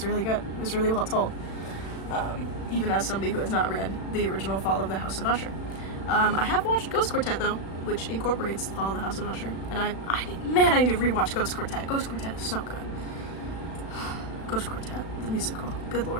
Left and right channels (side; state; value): right; late; 36 ms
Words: really good. It was really well told. Even as somebody who has not read the original Fall of the House of Usher. I have watched Ghost Quartet though, which incorporates the Fall of the House of Usher, and I need to rewatch Ghost Quartet. Ghost Quartet is so good. Ghost Quartet, the musical. Good